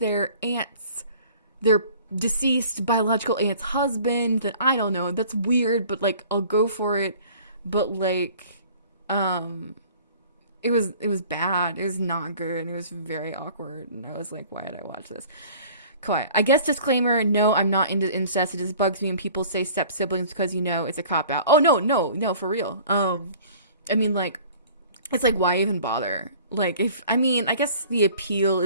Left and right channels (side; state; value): both; inverted; correlation -0.48